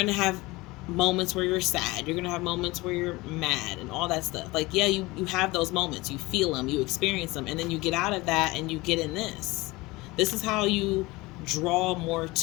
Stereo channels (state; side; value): quieter; right; 21.7 dB